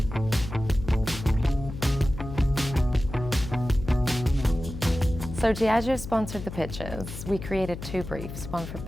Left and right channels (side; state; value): left; noise; hum, 9 dB below the sound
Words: So Diageo sponsored the pitches. We created 2 briefs, one for